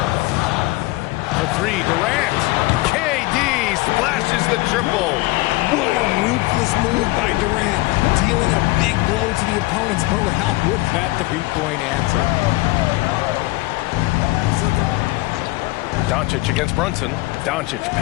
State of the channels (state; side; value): quieter; right; 21.1 dB